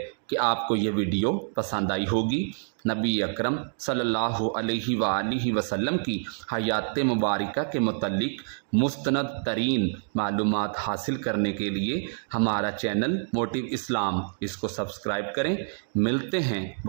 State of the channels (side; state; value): left; silent; digital silence